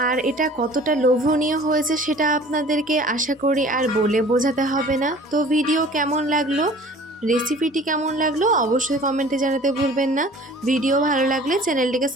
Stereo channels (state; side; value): normal; both; correlation 0.47